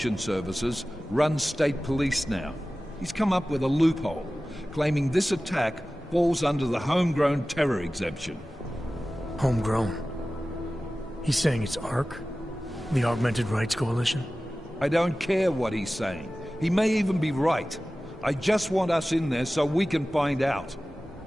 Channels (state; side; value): normal; both; correlation 0.96